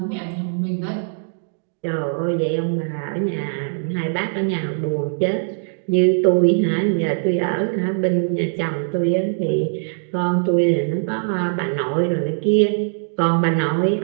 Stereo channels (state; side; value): silent; left; digital silence